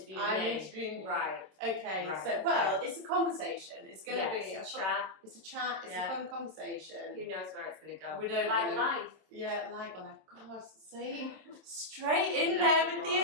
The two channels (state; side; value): late; left; 27 ms